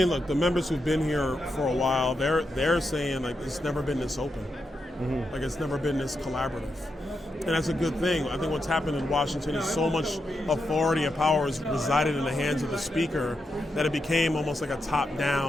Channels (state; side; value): normal; both; correlation 0.85